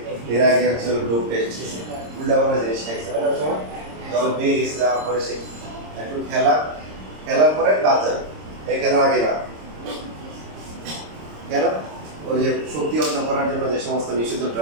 এর আগে হচ্ছে ডোপ টেস্ট উল্টা পাল্টা জিনিস খাইছে না ওই সময়, দল বেয়ে গেছে, যাওয়ার পরে সে একটু খেলার পরে বাদ যাবে, এই খেলার আগে না। কেন? ওই যে শক্তি অর্জন করার জন্য যে সমস্ত নিষিদ্ধ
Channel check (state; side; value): late; left; 26 ms